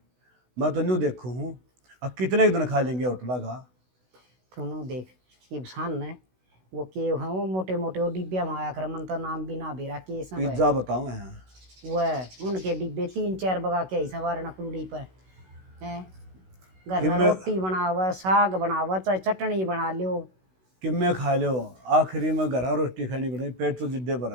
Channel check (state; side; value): late; left; 16 ms